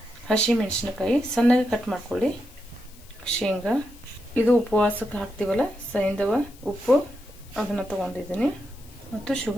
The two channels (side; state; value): left; noise; hiss, 24 dB below the sound